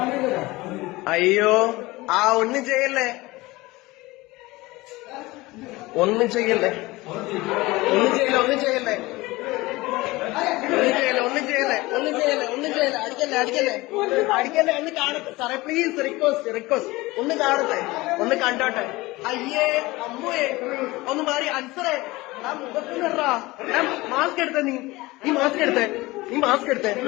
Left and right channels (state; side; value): quieter; right; 20.8 dB